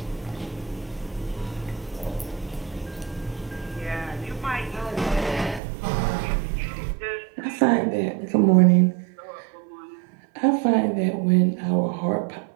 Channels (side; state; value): left; drops out; at 5.6 s